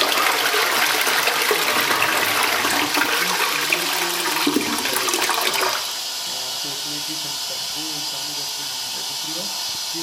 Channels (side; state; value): both; identical; correlation 1.00